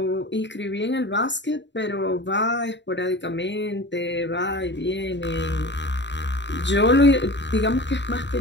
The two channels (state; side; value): late; right; 0.52 ms